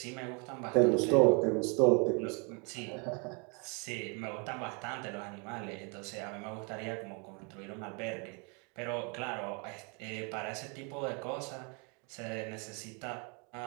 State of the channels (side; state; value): left; quieter; 33.9 dB